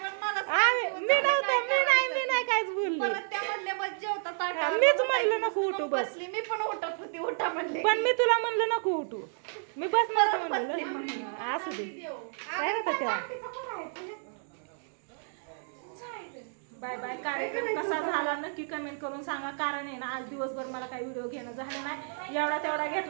मला मी नाही काहीच बोलली. परत त्यामधले बस जेवतात. मीच म्हणलं नको उठू बस. बसली मी पण उठत होती उठा म्हणले पण मी तुला म्हणलं नको उठू. मी बसणार म्हणलं असू दे काय होतं त्या बाय बाय. कार्यक्रम कसा झाला नक्की कमेंट करून सांगा. कारण आहे ना आज दिवसभर मला काही व्हिडिओ घेणं झालं नाही. एवढा तेवढा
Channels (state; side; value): silent; left; digital silence